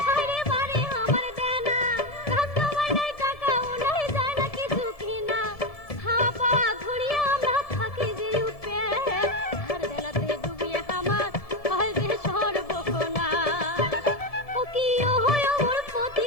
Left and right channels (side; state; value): right; late; 1.7 ms